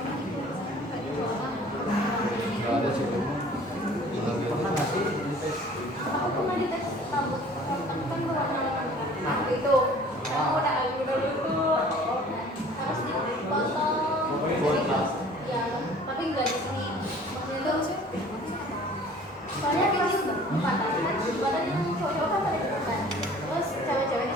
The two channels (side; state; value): both; normal; correlation 0.49